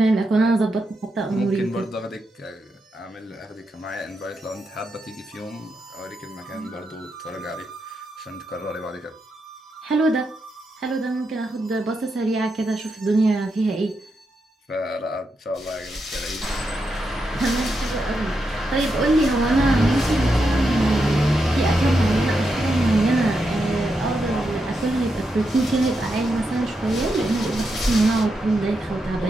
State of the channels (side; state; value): both; normal; correlation 0.84